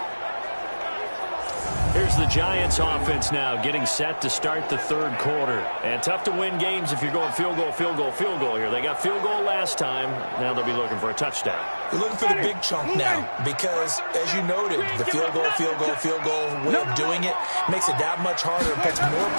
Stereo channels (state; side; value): inverted; both; correlation -1.00